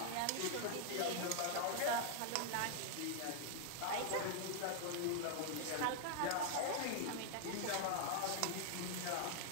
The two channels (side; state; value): both; different; correlation 0.00